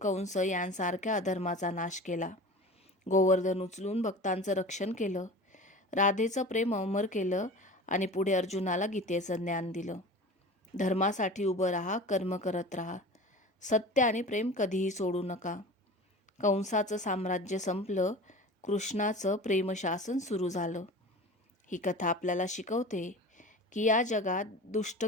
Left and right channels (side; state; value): both; normal; correlation 0.36